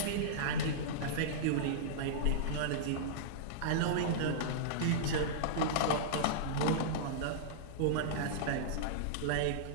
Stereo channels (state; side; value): different; both; correlation -0.03